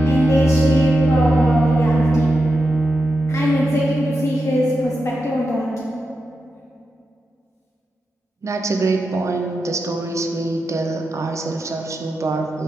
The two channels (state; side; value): normal; both; correlation 0.89